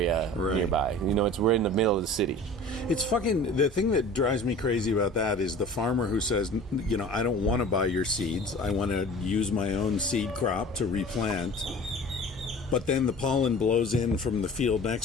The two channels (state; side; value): normal; both; correlation 0.41